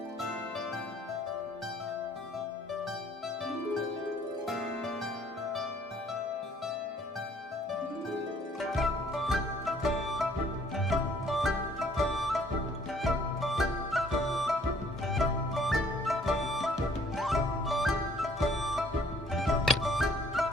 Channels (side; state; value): both; normal; correlation 0.61